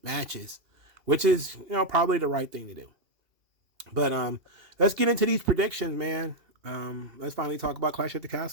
matches, which is, probably the right thing to do. But let's get into these predictions, man. Let's finally talk about Clash at the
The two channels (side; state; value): left; late; 2.8 ms